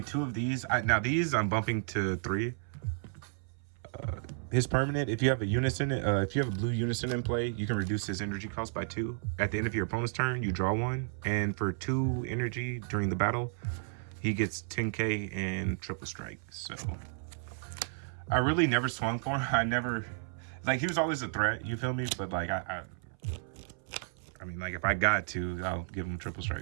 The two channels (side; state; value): left; silent; 56 dB below the other